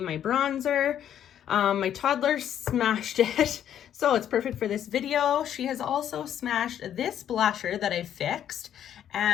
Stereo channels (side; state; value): right; quieter; 10.1 dB